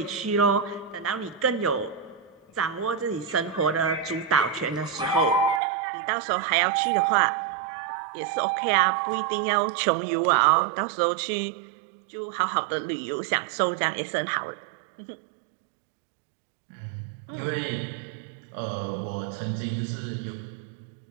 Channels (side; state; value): left; drops out; at 5.6 s